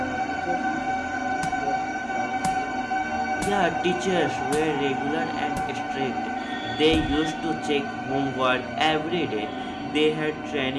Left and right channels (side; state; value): both; identical; correlation 1.00